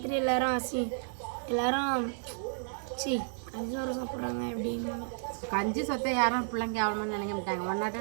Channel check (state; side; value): silent; left; 56 dB below the other